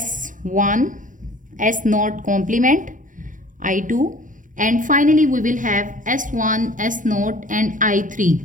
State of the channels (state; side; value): late; left; 0.38 ms